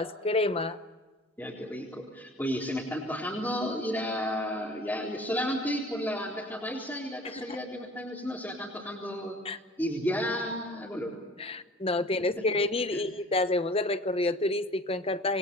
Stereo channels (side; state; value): both; normal; correlation 0.46